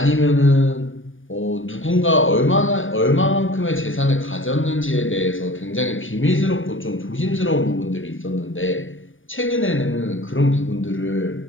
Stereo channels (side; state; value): right; late; 0.57 ms